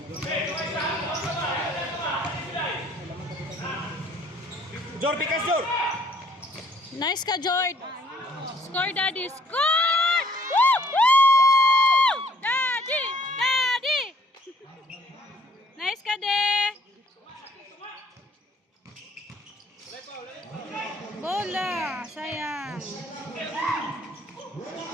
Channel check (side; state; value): both; normal; correlation 0.61